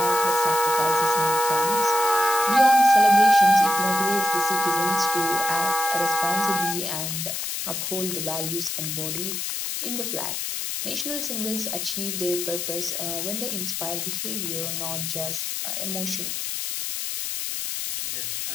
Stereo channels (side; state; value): left; noise; hiss, 3 dB below the sound